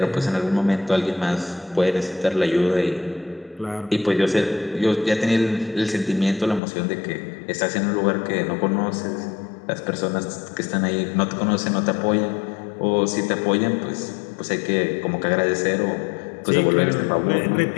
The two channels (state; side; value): drops out; right; at 6.6 s